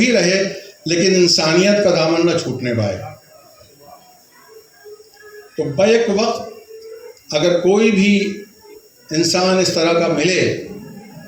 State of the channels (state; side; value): identical; both; correlation 1.00